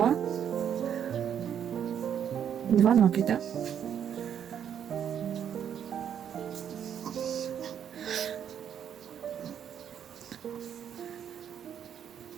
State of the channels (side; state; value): left; quieter; 8.9 dB